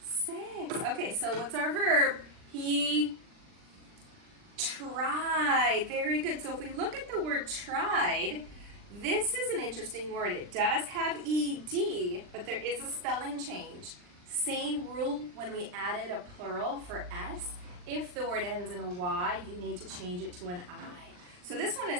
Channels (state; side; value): late; left; 39 ms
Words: 6. Okay, so what's our verb? He tried. Very good. So if we look at the word tried, this is an interesting word. It does have ED, but there is a spelling change. Same rule when we added a plural for S. If the word ends in a Y, you need to change it to an I. So this one